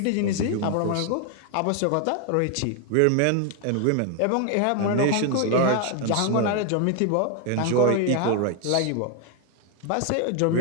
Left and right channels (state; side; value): different; both; correlation 0.01